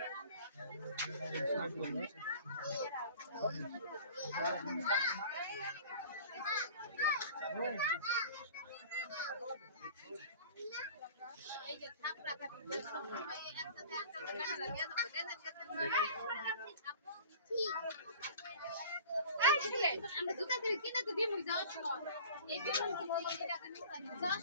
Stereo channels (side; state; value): both; inverted; correlation -0.42